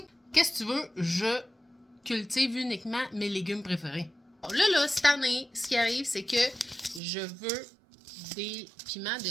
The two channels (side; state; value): left; drops out; at 7.0 s